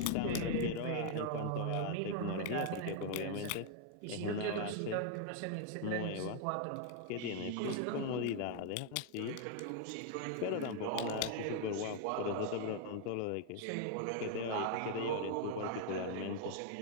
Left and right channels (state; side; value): different; both; correlation 0.00